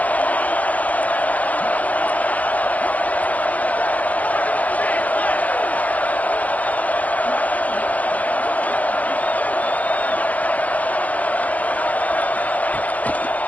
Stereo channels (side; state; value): right; late; 0.074 ms